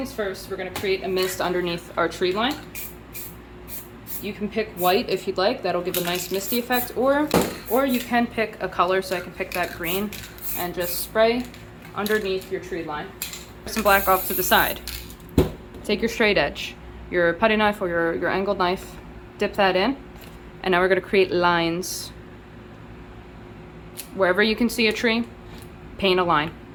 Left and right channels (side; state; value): both; identical; correlation 1.00